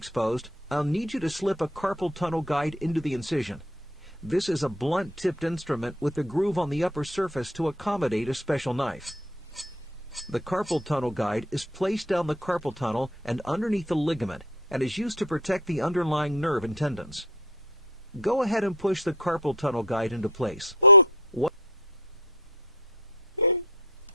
I'll need you to slip a carpal tunnel guide into the incision. This is a blunt-tipped instrument with a groove on the upper surface to accommodate a special knife. The carpal tunnel guide is placed down the carpal tunnel and underneath the ligament and is used to protect the underlying nerve and tendons. Go ahead and push the carpal tunnel guide into place. Oh. What?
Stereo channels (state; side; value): normal; both; correlation 0.38